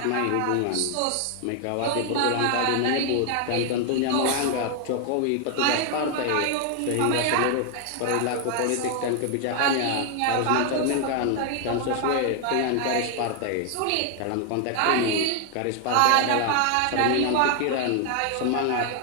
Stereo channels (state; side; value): different; both; correlation 0.00